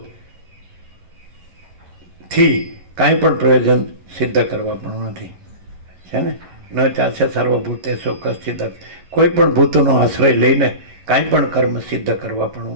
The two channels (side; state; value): left; late; 11 ms